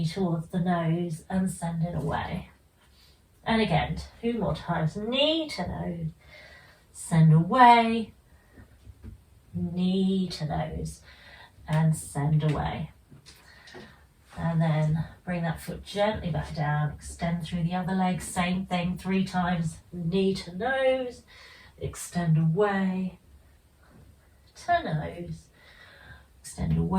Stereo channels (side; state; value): both; identical; correlation 1.00